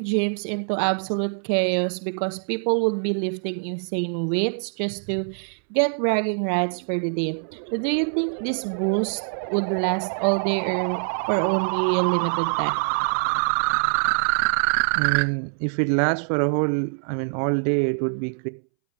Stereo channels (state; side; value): silent; left; 63 dB below the other